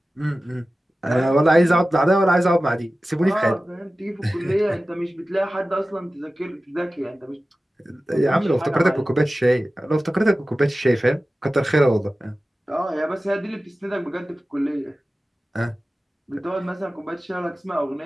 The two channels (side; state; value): both; normal; correlation 0.95